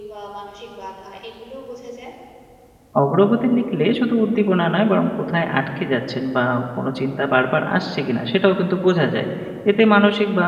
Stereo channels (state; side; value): identical; both; correlation 1.00